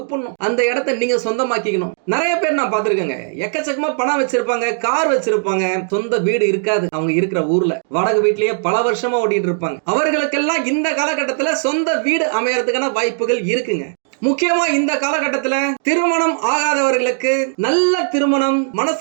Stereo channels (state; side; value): silent; left; digital silence